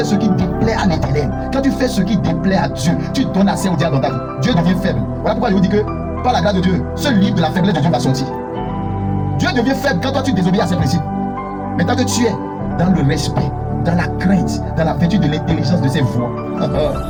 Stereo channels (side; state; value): both; identical; correlation 1.00